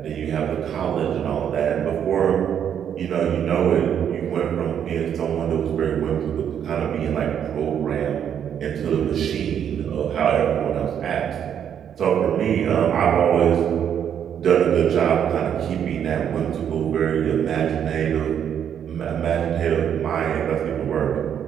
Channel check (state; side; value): quieter; left; 8.8 dB